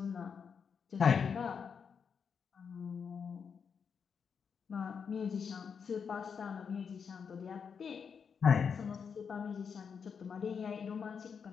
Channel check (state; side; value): quieter; right; 6.4 dB